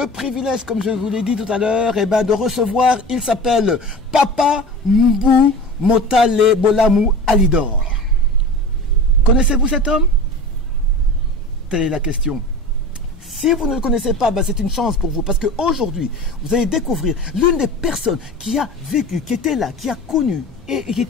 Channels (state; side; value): normal; both; correlation 0.35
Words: privilège, comme je vous l'ai dit tout à l'heure, eh ben, de recevoir, il s'appelle Papa Mbou Motale Bolamou Alidor. Connaissez-vous cet homme? Telle est la question. Si vous ne le connaissez pas, ben c'est une chance pour vous, parce qu'aujourd'hui, vous allez découvrir l'une des personnes qui a vécu, qui était là, qui a connu, et qui